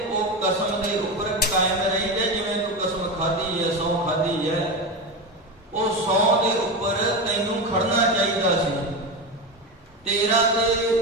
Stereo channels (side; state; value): both; normal; correlation 0.19